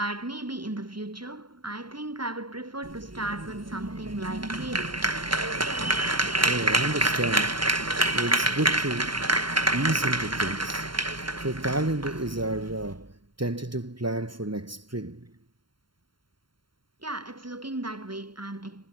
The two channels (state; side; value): late; left; 0.73 ms